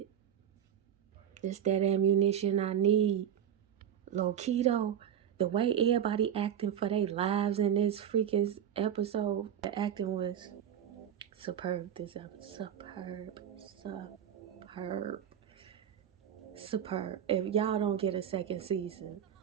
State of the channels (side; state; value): left; quieter; 9.5 dB